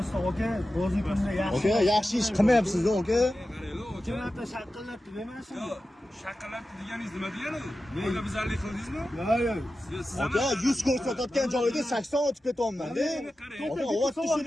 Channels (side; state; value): both; normal; correlation 0.93